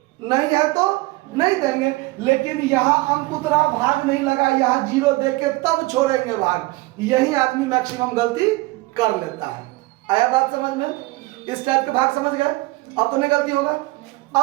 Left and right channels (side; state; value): left; quieter; 21.6 dB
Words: नहीं है तो नहीं देंगे। लेकिन यहाँ अंक उतरा, भाग नहीं लगा, यहाँ 0 दे के तब छोड़ेंगे भाग। यही आदमी मैक्सिमम गलती कर लेता है। आया बात समझ में? इस टाइप के भाग समझ गए, अब तो नहीं गलती होगा।